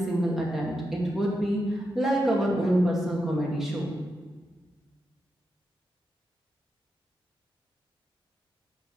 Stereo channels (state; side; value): normal; both; correlation 0.86